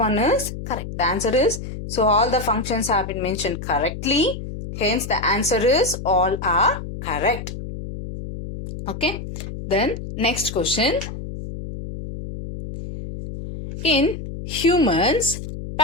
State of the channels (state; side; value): noise; left; hum, 8 dB below the sound